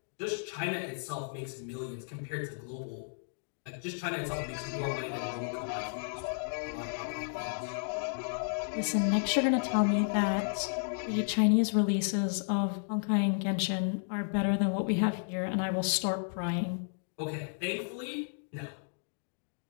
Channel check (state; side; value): silent; right; digital silence